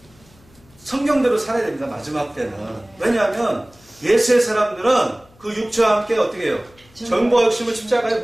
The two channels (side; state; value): left; noise; hum, 29 dB below the sound